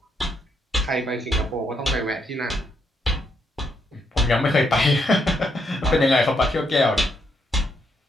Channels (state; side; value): normal; both; correlation 0.77